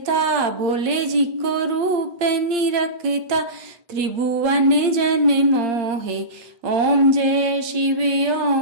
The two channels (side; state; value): left; late; 8.7 ms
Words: भोले जी को रूप निरखता त्रिभुवन जन मोहे ओम जय शिव